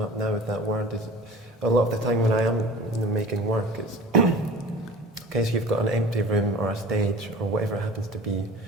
up now with that word, is a lot of the time when I am making work, it's okay, so you've got an empty room or a stage or whatever it happens to be,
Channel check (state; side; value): normal; both; correlation 0.41